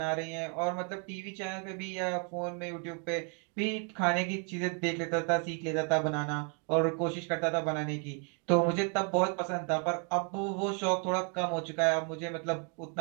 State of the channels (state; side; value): quieter; left; 39.8 dB